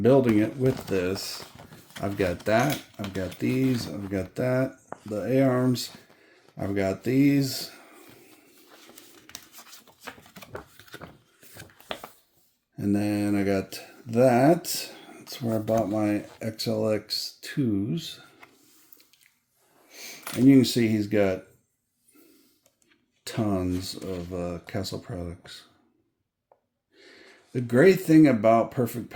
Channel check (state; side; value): identical; both; correlation 1.00